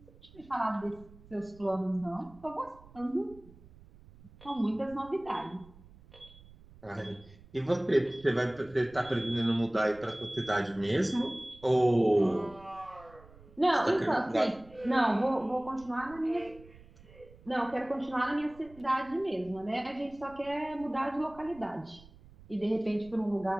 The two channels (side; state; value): right; noise; rumble, 23 dB below the sound